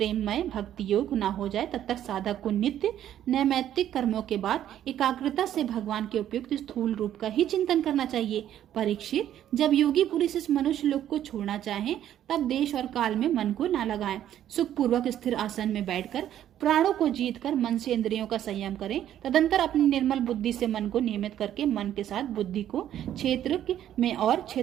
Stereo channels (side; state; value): left; quieter; 11.2 dB